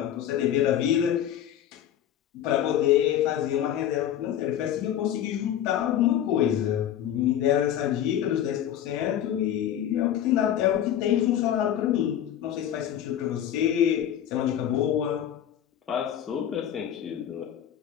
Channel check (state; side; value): quieter; right; 10.6 dB